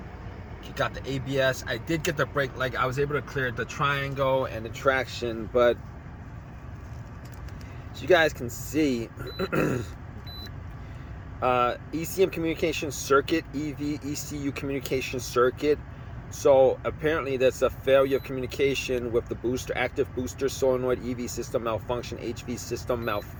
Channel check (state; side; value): identical; both; correlation 1.00